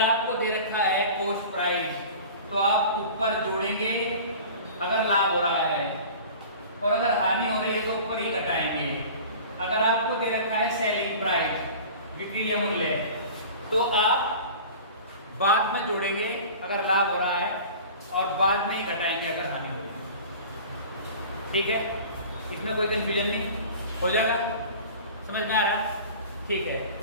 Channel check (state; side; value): inverted; both; correlation -0.40